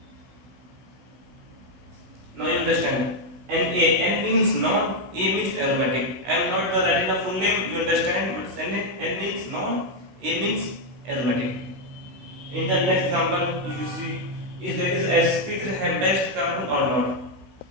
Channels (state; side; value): late; left; 16 ms